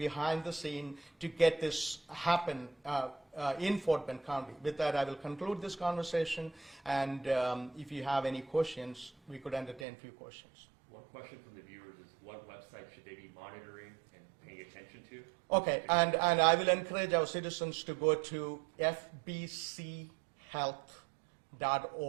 the scene to get this happen in Fort Bend County. With that, I will conclude this conversation, and if you have any questions, we could entertain a few questions. One question from the viewers is, what website should they be monitoring and paying attention to? Okay, and I will encourage our citizens to go to fbchealth.org,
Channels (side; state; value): left; drops out; at 9.9 s